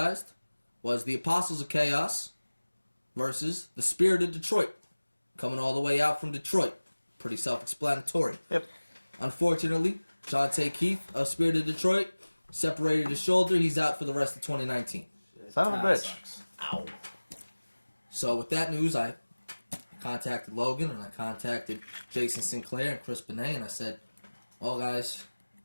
was the Apostles of Chaos versus the Spirit of Detroit, coming all the way out from Detroit. Pretty self-explanatory. Yep. Unfortunately, Jonte Keith of Spirit of Detroit separated his shoulder. He's out for the rest of 2019. Son of a bitch. Ow. So with that news, I contacted Logan and I contacted Jason Sinclair and Chris Benet, and I said, well, guys,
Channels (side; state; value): both; inverted; correlation -1.00